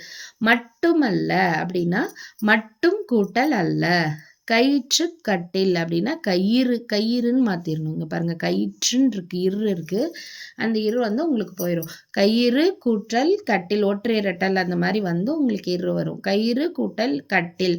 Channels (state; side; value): identical; both; correlation 1.00